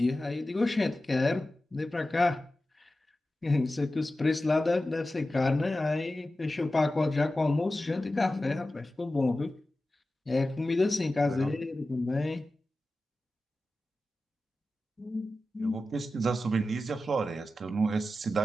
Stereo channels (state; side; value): normal; both; correlation 0.94